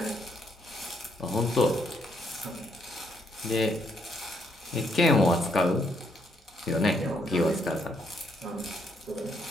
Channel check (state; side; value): normal; both; correlation 0.73